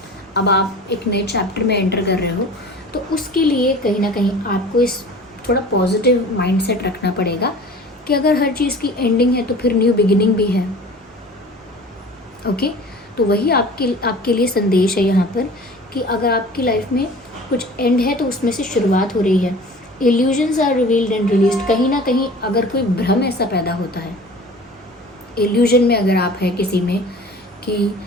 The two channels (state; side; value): normal; both; correlation 0.42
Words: अब आप एक नए चैप्टर में एंटर कर रहे हो। तो उसके लिए कहीं ना कहीं आपको इस थोड़ा पॉजिटिव माइंडसेट रखना पड़ेगा कि अगर हर चीज़ की एंडिंग है तो फिर न्यू बिगिनिंग भी है। ओके, तो वही आपके लिए संदेश है यहाँ पर कि अगर आपकी लाइफ में कुछ एंड है तो उसमें से शुरुआत हो रही है। Illusions are revealed and released. कहीं ना कहीं अगर कोई भ्रम ऐसा पैदा होता है, इल्यूजन में अगर आप हैं किसी में कि